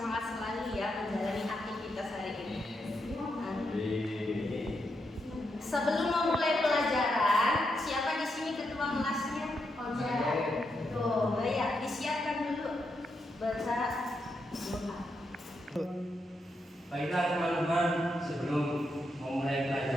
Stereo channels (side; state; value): both; normal; correlation 0.83